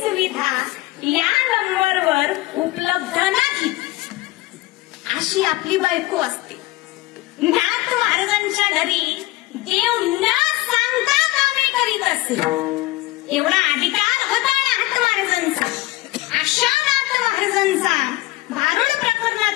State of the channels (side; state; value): right; quieter; 18.9 dB